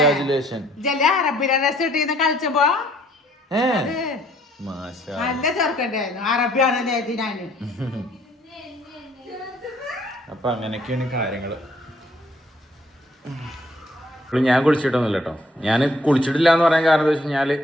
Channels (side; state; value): both; normal; correlation 0.64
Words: ജല അറബിയുടെ ഡ്രസ് ഇട്ടിന്ന് കളിച്ചപ്പോ മാഷാ നല്ല ചെറുക്കണ്ടായിരുന്നു. അറബിയാണ് ഞാന്. അപ്പൊ അങ്ങനെയൊക്കെയാണ് കാര്യങ്ങള്. ഞാൻ കുളിച്ചിട്ടൊന്നുമില്ല കേട്ടോ. ഞാൻ കുളിച്ചിട്ടില്ല എന്ന് പറയാൻ കാരണം എന്താ വെച്ച് കഴിഞ്ഞാൽ